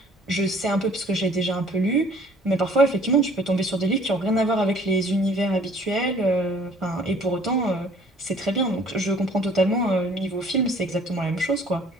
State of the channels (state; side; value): normal; both; correlation 0.55